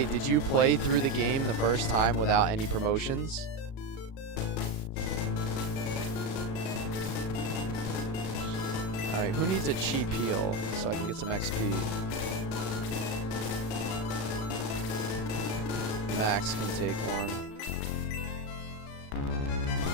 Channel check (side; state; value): right; late; 37 ms